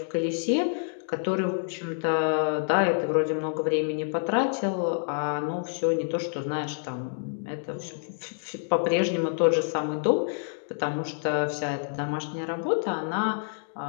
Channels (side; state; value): right; silent; digital silence